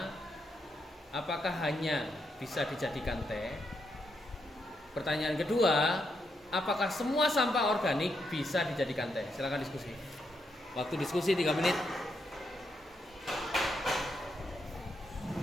apakah hanya bisa dijadikan teh? Pertanyaan kedua, apakah semua sampah organik bisa dijadikan teh? Silakan diskusi. Waktu diskusi 3 menit.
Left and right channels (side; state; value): both; normal; correlation 0.80